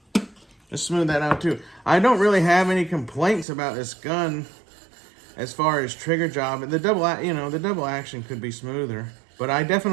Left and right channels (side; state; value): left; drops out; at 3.5 s